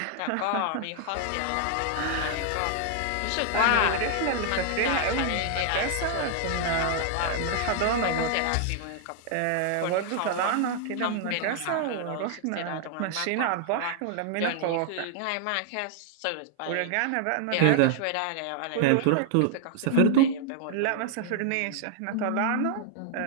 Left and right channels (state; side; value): different; both; correlation 0.00